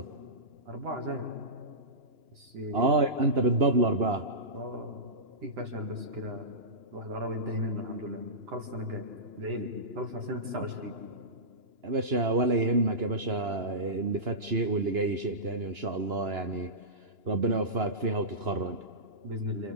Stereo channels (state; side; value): late; left; 2.9 ms